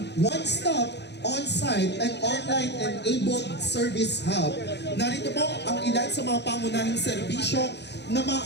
one-stop on-site and online-enabled service hub. Narito po ang ilan sa mga pangunahing serbisyo na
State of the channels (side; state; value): right; late; 0.50 ms